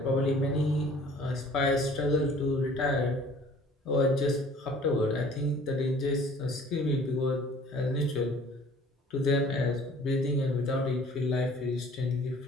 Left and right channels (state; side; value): normal; both; correlation 0.52